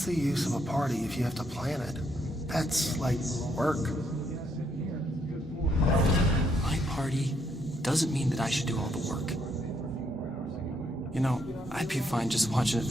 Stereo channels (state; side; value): normal; both; correlation 0.73